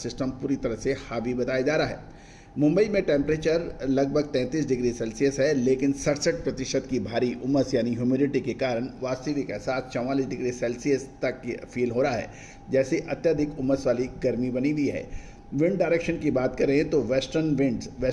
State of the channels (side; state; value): both; identical; correlation 1.00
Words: पूरी तरह से हावी बताया जा रहा है। मुंबई में टेम्परेचर लगभग 33 डिग्री सेल्सियस है, लेकिन 67% की भारी उमस यानी ह्यूमिडिटी के कारण वास्तविक एहसास 44 डिग्री सेल्सियस तक फील हो रहा है, जैसे अत्यधिक उमस वाली गर्मी बनी हुई है। विंड डायरेक्शन की बात करें तो